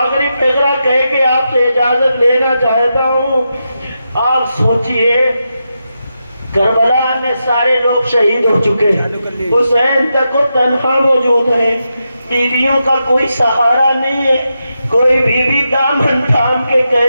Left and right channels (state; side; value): inverted; both; correlation -0.87